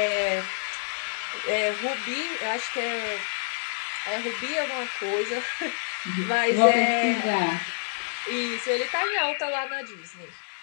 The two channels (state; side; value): silent; right; digital silence